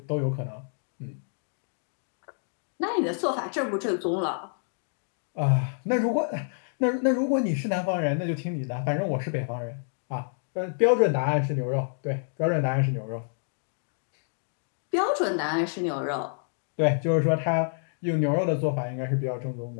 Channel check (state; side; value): silent; right; digital silence